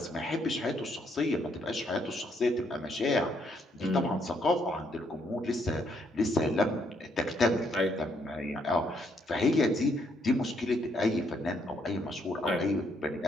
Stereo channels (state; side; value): normal; both; correlation 0.72